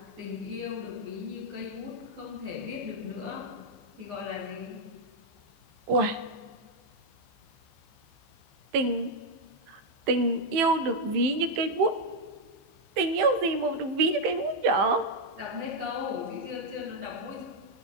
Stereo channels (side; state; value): left; late; 15 ms